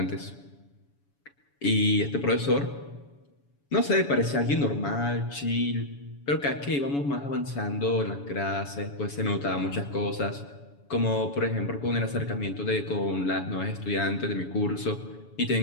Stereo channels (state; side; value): late; right; 7.1 ms